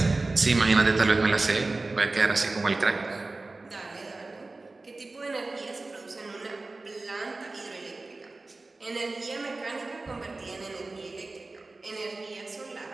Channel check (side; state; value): left; quieter; 3.3 dB